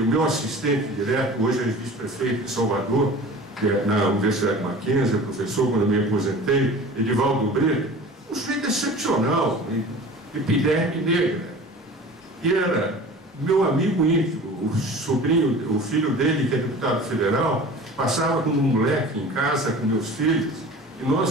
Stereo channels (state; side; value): normal; both; correlation 0.40